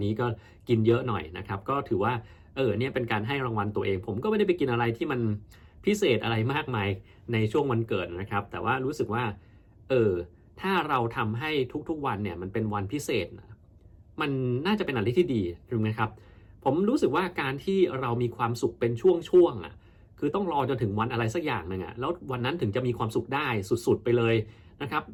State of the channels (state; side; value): identical; both; correlation 1.00